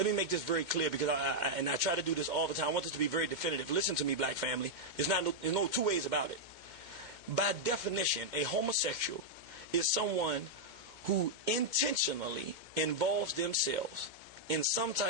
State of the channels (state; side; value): late; left; 2.2 ms